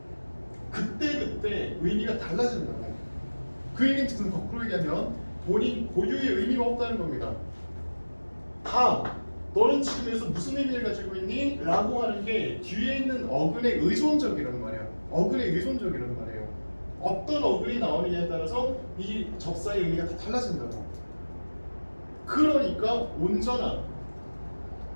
그때 의미가 달라진다고. 그 얘기는 거꾸로 얘기하면 본인 고유의 의미가 없다는 겁니다. 다 너는 지금 여기서 무슨 의미를 가지고 있니? 라고 하는 게 뒤에 있는 어근에 의존적이라는 말이야. 어근에 의존적이라는 말이에요. 어떤 어근이 나오느냐에 따라서 이 접사의 의미가 다 달라진다고. 그러니까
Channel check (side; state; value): both; inverted; correlation -1.00